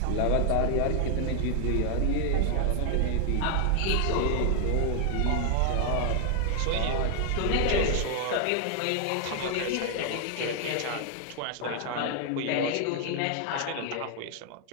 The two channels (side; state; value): both; different; correlation 0.00